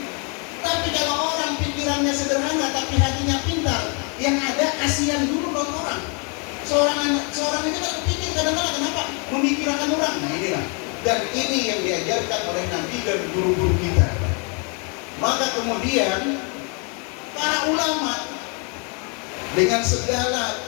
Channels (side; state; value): right; quieter; 35.8 dB